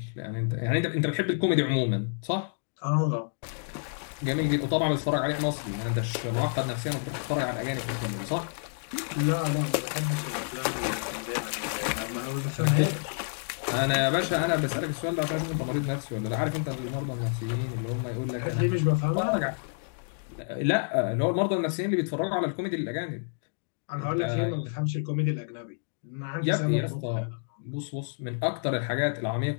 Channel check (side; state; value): right; silent; digital silence